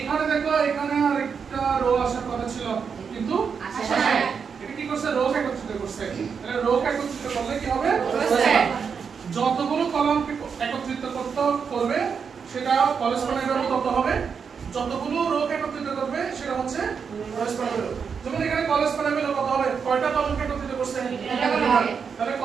দেখো এখানে আরেকটা রো আসার কথা ছিল কিন্তু আসে না এটা কি করছে রো একত্রিত করছে তাহলে রো একত্রিত করলে কি হবে যতগুলো কলামকে একত্রিত করবে সেটা কোলেস্ট্রলের ভ্যালু কত হবে যতগুলো রো একত্রিত করবে সেটা হচ্ছে কোলেস্ট্রলের ভ্যালু যেমন এখানে কোলেস্ট্রলের ভ্যালু কত হবে কয়টা কলামকে একত্রিত করছে তাহলে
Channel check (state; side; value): quieter; left; 6.2 dB